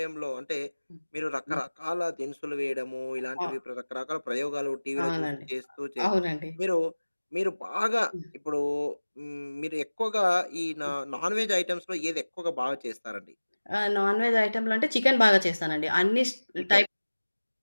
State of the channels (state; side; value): inverted; both; correlation -1.00